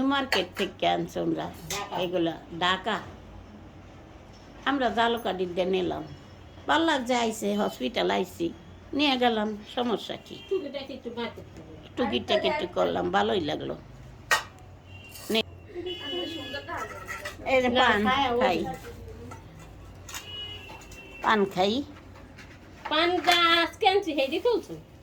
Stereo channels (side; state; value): both; identical; correlation 1.00